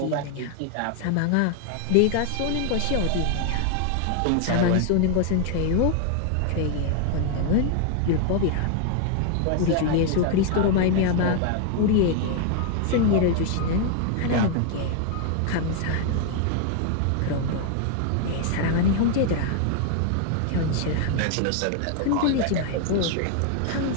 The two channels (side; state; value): both; different; correlation 0.00